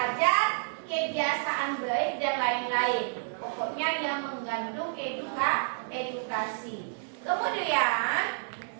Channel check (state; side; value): silent; left; digital silence